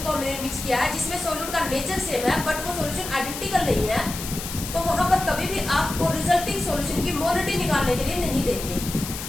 को हमने मिक्स किया है जिसमें सॉल्यूट का नेचर सेम है बट वो सॉल्यूशन आइडेंटिकल नहीं है, तो वहां पर कभी भी आपको रिजल्टिंग सॉल्यूशन की मोलरिटी निकालने के लिए नहीं देंगे,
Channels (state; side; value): noise; left; hiss, 8 dB below the sound